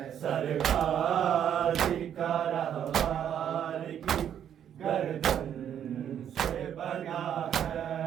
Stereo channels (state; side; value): quieter; left; 9.4 dB